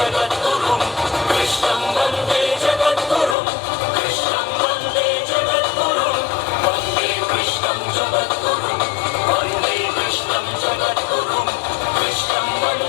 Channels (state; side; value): drops out; right; at 3.4 s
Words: కృష్ణం వందే జగద్గురుం కృష్ణం వందే జగద్గురుం వందే కృష్ణం జగద్గురుం వందే కృష్ణం జగద్గురుం కృష్ణం